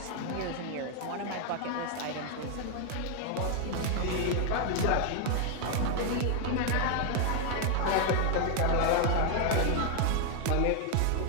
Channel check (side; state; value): both; different; correlation 0.00